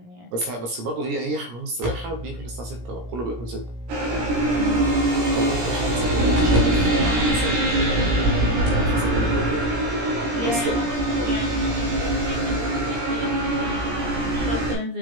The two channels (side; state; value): left; late; 17 ms